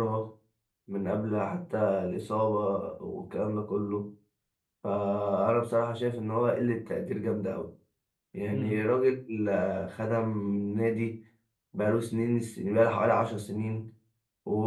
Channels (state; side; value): identical; both; correlation 1.00